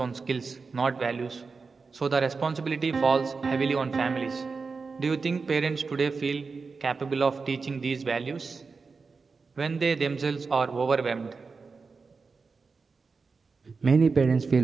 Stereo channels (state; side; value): quieter; left; 4.6 dB